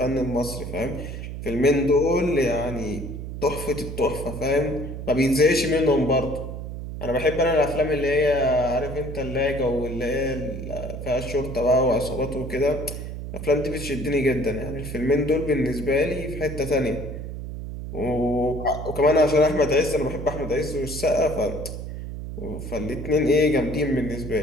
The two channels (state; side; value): noise; right; hum, 8 dB below the sound